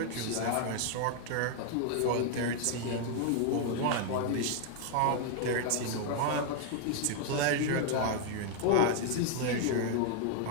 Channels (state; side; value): different; both; correlation 0.00